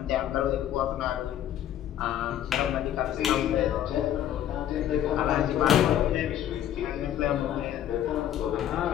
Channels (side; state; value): right; quieter; 11.1 dB